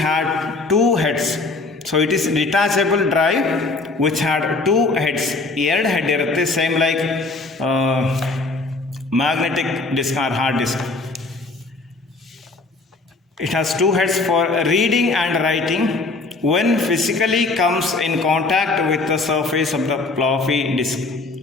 had 2 heads. So it is detachable drive which had 2 heads. 2 head ಇರುತ್ತೆ, same like magnetic disk or hard disk. It has 2 heads for reading and writing. When physically comes in contact with the surface of the floppy disk,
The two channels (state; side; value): quieter; right; 3.6 dB